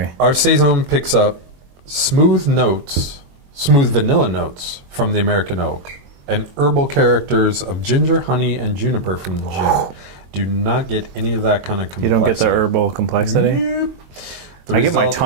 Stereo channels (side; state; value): left; late; 22 ms